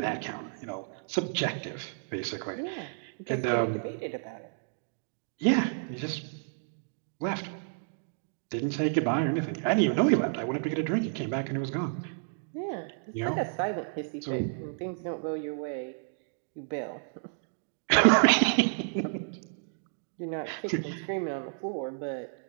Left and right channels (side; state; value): left; silent; digital silence